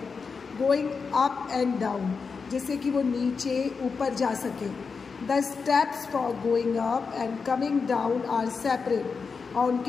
गोइंग अप एंड डाउन, जिससे कि वो नीचे ऊपर जा सके. The steps for going up and coming down are separate. और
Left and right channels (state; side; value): quieter; right; 5.2 dB